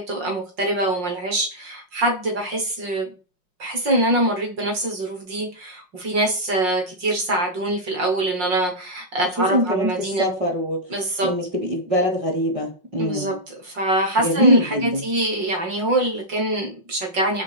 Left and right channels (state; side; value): late; left; 5.6 ms